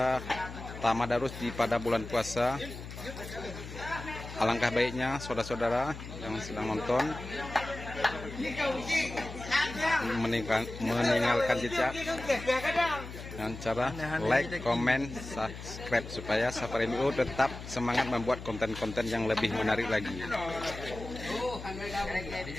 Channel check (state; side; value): noise; left; hum, 11 dB below the sound